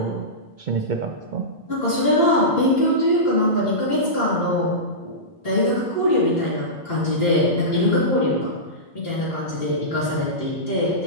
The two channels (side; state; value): both; normal; correlation -0.17